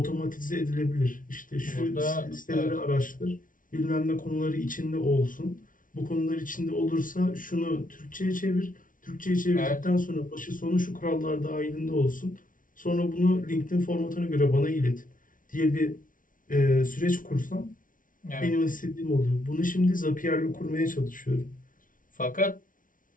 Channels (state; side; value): late; right; 0.39 ms